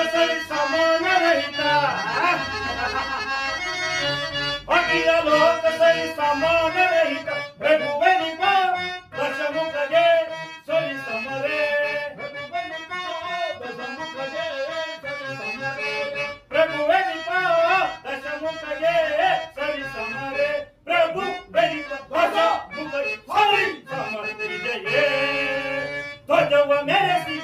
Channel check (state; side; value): identical; both; correlation 1.00